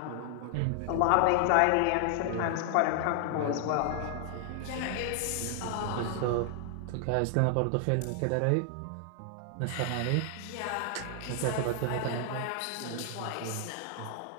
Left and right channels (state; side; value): different; both; correlation 0.00